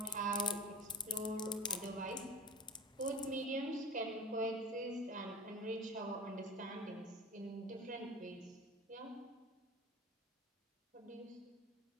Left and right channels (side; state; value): both; normal; correlation 0.37